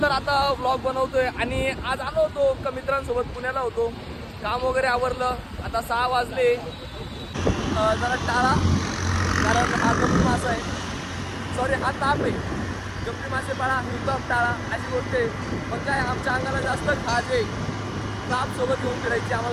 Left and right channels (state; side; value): identical; both; correlation 1.00